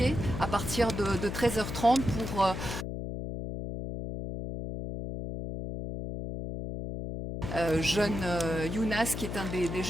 à partir de 13h30 pour jeune Younas, qui est un des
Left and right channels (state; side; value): noise; left; hum, 5 dB below the sound